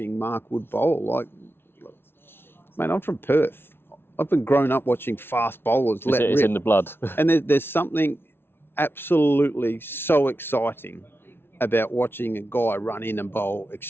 Mark Wood bowl. Man, I'm from Perth. I've been grown up watching fast bowlers let rip. It's in the blood. And there's something absolutely so exciting about watching a guy run in and bowl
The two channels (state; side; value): late; right; 0.11 ms